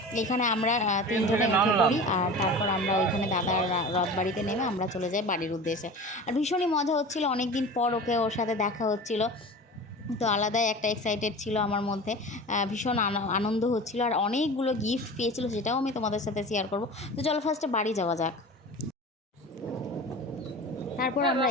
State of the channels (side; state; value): both; normal; correlation 0.35